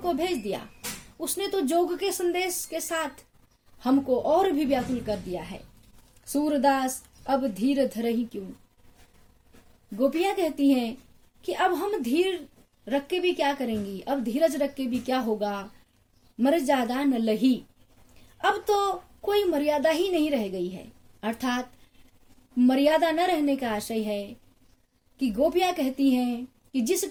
भेज दिया, उसने तो जोग के संदेश के साथ हमको और भी व्याकुल कर दिया है। सूरदास अब धीर धरही क्यों। गोपियां कहती हैं कि अब हम धीर रख के भी क्या करेंगी, अब धीरज रख के भी क्या होगा, मर्यादा न लही। अब तो कोई मर्यादा ही नहीं रह गई है। अर्थात मर्यादा न रहने का आशय है कि गोपियां कहती हैं कि जिस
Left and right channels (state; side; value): identical; both; correlation 1.00